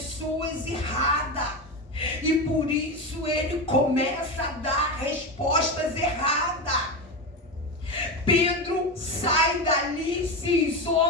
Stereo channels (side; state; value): both; normal; correlation 0.18